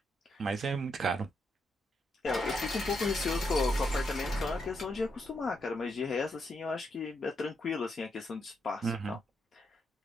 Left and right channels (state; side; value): normal; both; correlation 0.80